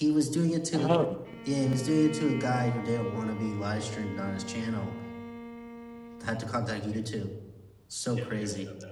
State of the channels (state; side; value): identical; both; correlation 1.00